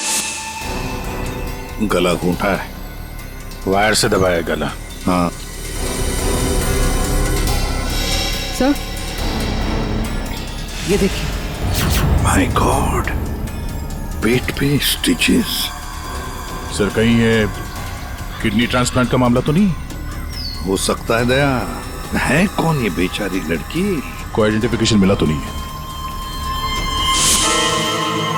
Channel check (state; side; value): identical; both; correlation 1.00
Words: गला घूंटा है, वायर से दबाया गला। हाँ सर, ये देखिए। माय गॉड, पेट पे स्टिचेस। सर कहीं ये किडनी ट्रांसप्लांट का मामला तो नहीं? हो सकता है दया। है कौन ये बेचारी लड़की? कोई आइडेंटिफिकेशन मिला तो नहीं है?